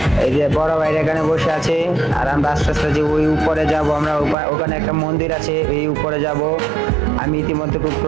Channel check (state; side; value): drops out; left; at 4.4 s